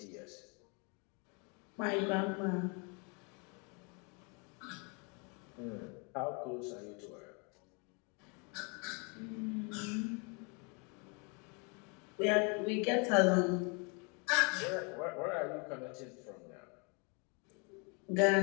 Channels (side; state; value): right; quieter; 33.6 dB